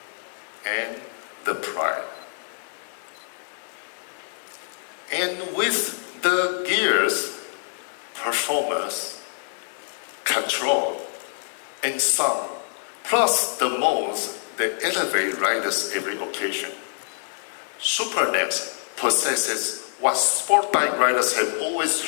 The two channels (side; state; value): right; silent; 61 dB below the other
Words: and the pride. And with the gears, performance, control, and sound, plus the modes that elevate riders every occasion, SuperNEX possesses what sport bike riders have always